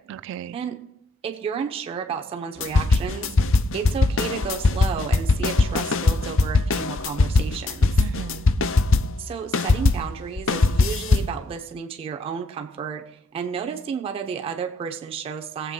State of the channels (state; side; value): normal; both; correlation 0.73